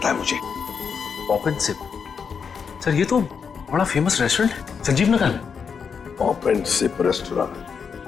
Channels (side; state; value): right; quieter; 6.3 dB